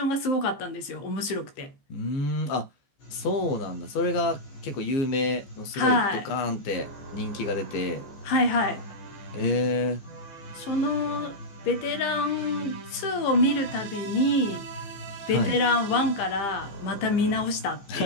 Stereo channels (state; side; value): late; right; 15 ms